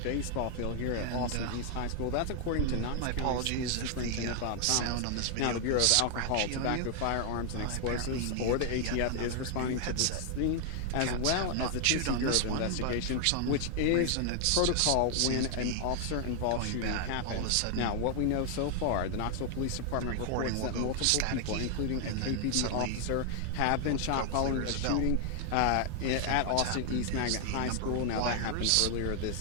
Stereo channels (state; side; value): different; both; correlation 0.00